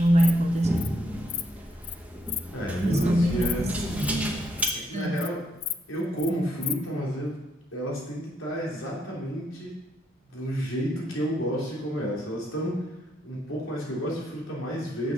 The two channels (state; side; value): normal; both; correlation 0.75